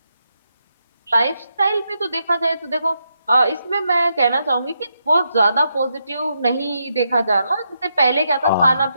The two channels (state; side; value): inverted; both; correlation -0.82